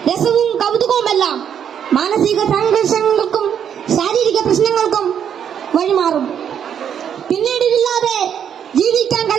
രസവും കൗതുകവുമെല്ലാം മാനസിക സംഘർഷങ്ങൾക്കും ശാരീരിക പ്രശ്നങ്ങൾക്കും വഴിമാറും. പിന്നീട് ഇതില്ലാതെ ജീവിക്കാൻ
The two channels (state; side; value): quieter; left; 8.6 dB